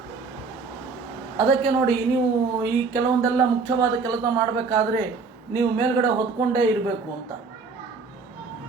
ಅದಕ್ಕೆ ನೋಡಿ, ನೀವು ಈ ಕೆಲವೊಂದೆಲ್ಲ ಮುಖ್ಯವಾದ ಕೆಲಸ ಮಾಡಬೇಕಾದ್ರೆ ನೀವು ಮೇಲ್ಗಡೆ ಹೊದ್ಕೊಂಡೇ ಇರಬೇಕು ಅಂತ.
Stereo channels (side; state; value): left; quieter; 4.6 dB